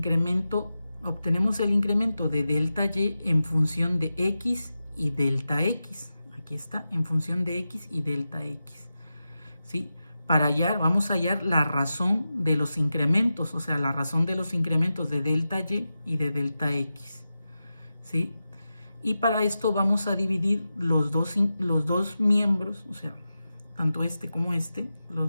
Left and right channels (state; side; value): inverted; both; correlation -0.92